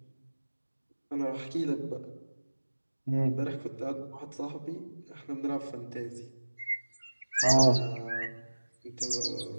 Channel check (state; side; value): inverted; both; correlation -1.00